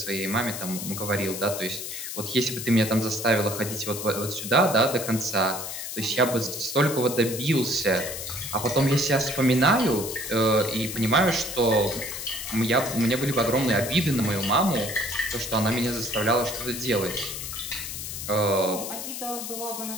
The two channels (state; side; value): noise; left; hiss, 7 dB below the sound